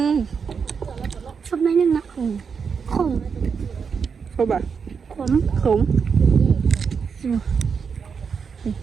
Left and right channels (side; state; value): left; quieter; 6.1 dB